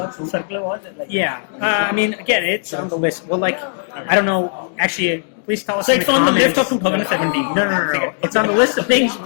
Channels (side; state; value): right; silent; digital silence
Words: circular watch. I mean, again, it's on the list. Well, I don't know. Actually, please tell us. So it's on the list of 2017. No. It's on the list of things